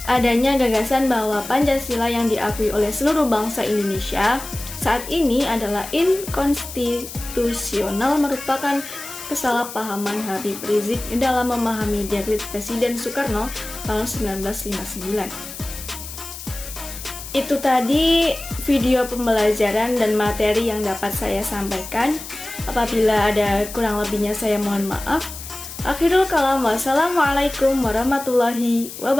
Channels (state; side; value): noise; left; hiss, 12 dB below the sound